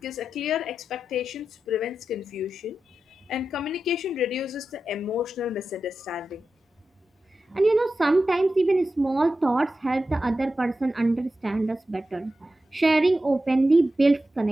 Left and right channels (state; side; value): normal; both; correlation 0.91